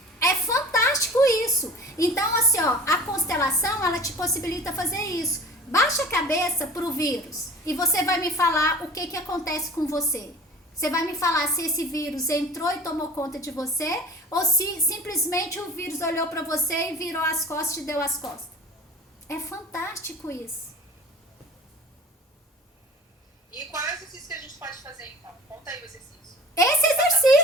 É fantástico isso. Então, assim, ó, a constelação, ela te possibilita fazer isso. Baixa a cabeça pro vírus e você vai me falar o que acontece com você. Você vai me falar se esse vírus entrou e tomou conta de você ou se simplesmente o vírus olhou para você e virou as costas e te deu as costas. É fantástico isso. E qual é o exercício que a gente pode fazer, então? Conta aí o exercício. Esse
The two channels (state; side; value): normal; both; correlation 0.41